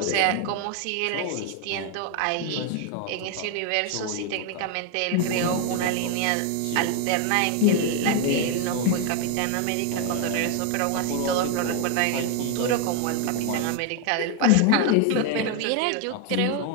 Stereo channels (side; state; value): both; different; correlation 0.01